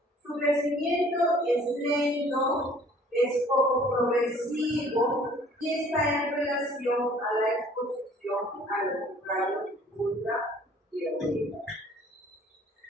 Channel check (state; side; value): normal; both; correlation 0.54